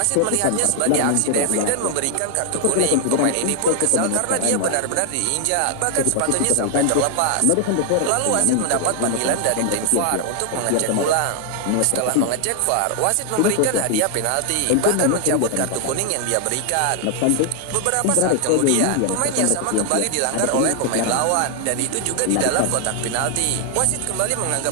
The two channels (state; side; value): different; both; correlation 0.00